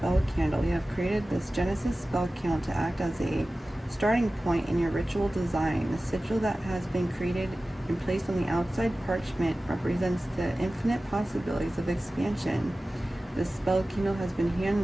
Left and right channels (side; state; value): both; normal; correlation 0.96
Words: candle. We have created this Genesis spell candle to act as a starting point in your ritual design. The sigil that has been created and placed on the outside parchment represents the infinite possibilities of expansion. This spell candle has been